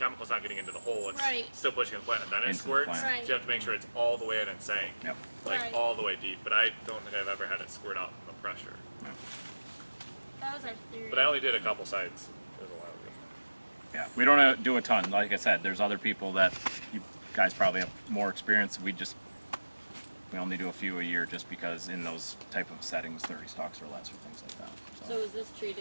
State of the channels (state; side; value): inverted; both; correlation -1.00